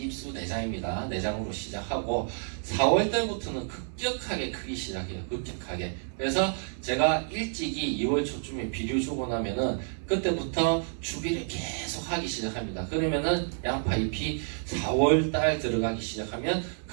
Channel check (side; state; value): left; silent; 58 dB below the other